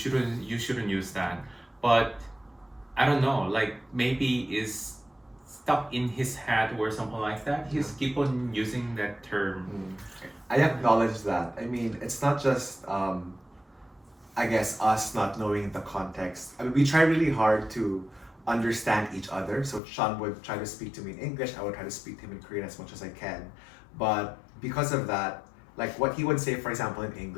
use that. But I don't know, like maybe it's stuck in his head or something like that. He's keep on using that term. I acknowledge that. I mean, it's not just, I guess, us not knowing the context. I mean, we try really hard to understand each other. So Sean would try to speak to me in English, I would try to speak to him in Korean as much as I can. But because of that, like what he would say, for example, in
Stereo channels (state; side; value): drops out; right; at 19.8 s